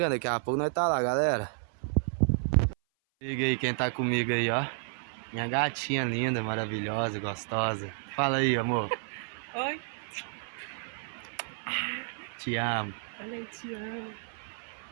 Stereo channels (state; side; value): silent; left; 56 dB below the other